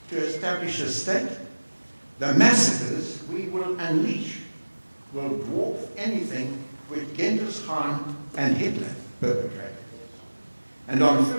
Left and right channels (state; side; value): inverted; both; correlation -1.00